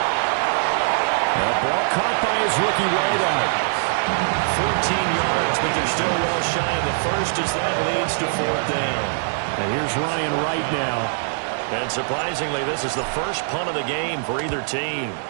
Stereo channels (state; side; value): silent; left; digital silence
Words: The ball caught by his rookie wideout. 14 yards, but they're still well shy of the 1st as that leads to 4th down. And here's Ryan Wright now. And surprisingly, this is the first punt of the game for either team.